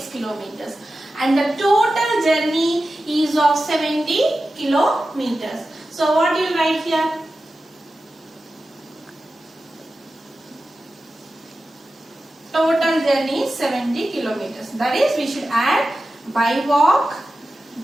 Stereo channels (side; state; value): both; normal; correlation 0.93